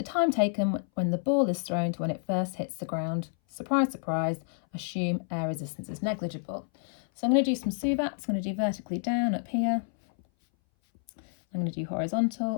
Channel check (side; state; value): right; silent; 58 dB below the other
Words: time taken when the ball is thrown to when it first hits the ground. Surprise, surprise, assume air resistance is negligible. So I'm going to do some SUVATs. I'm going to do vertically down up here. I'm going to do